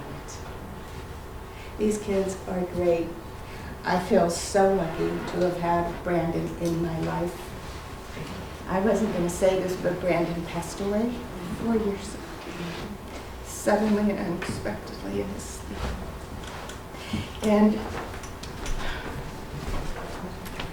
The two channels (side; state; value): both; identical; correlation 1.00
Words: These kids are great. I feel so lucky to have had Brandon in my life. I wasn't going to say this, but Brandon passed away 4 years ago, suddenly and unexpectedly in his sleep. And